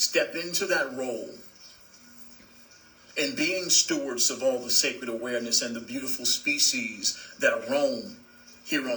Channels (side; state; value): both; identical; correlation 1.00